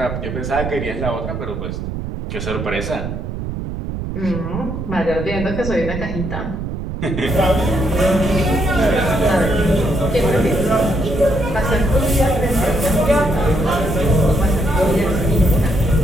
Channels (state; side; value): noise; right; rumble, 6 dB below the sound